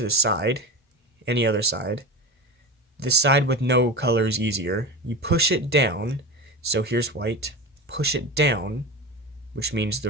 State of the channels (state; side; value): normal; both; correlation 0.26